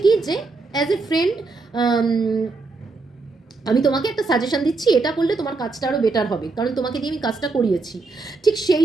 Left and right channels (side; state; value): left; quieter; 3.8 dB